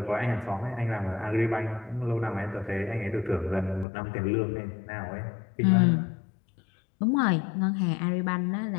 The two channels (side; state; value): right; drops out; at 3.9 s